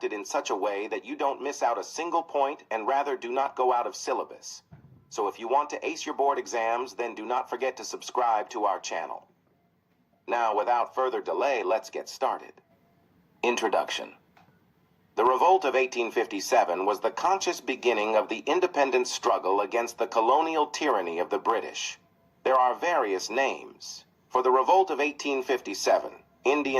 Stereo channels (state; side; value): identical; both; correlation 1.00